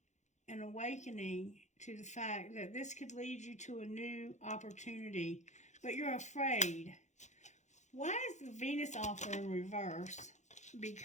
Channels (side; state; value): right; late; 0.34 ms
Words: and awakening to the fact that this could lead you to a new opportunity, but you're afraid. Why is the Venus offer in reverse?